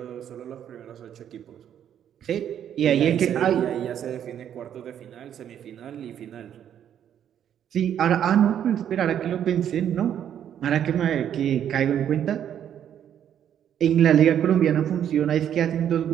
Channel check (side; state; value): left; quieter; 9.7 dB